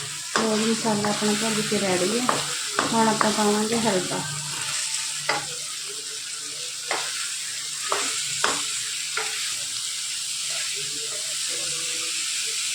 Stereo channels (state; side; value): identical; both; correlation 1.00